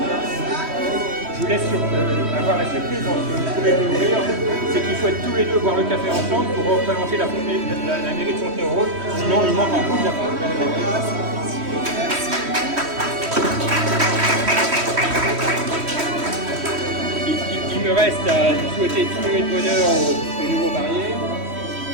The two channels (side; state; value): left; late; 3.1 ms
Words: vous laisse avoir la surprise dans ce que vous pouvez découvrir, c'est qu'ils souhaitent tous les deux boire le café ensemble pour représenter la mairie de Fontenay-aux-Roses, sinon il manque un bout de la mairie. Il me reste à vous souhaiter tout le bonheur aux nouveaux mariés.